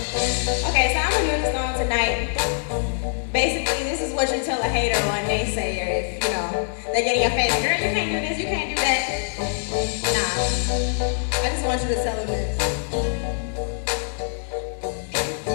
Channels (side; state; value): right; silent; digital silence